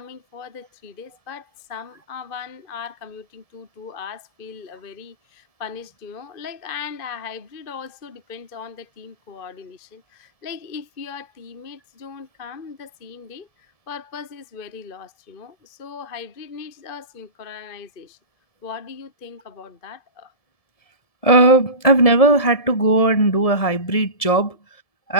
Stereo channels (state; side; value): late; right; 1.7 ms